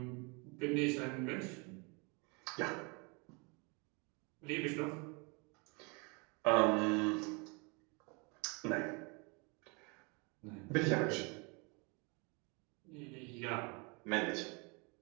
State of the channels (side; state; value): left; quieter; 31.1 dB